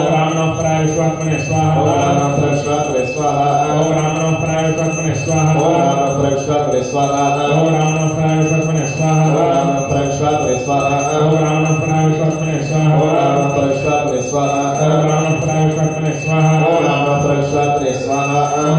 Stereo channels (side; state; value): both; identical; correlation 1.00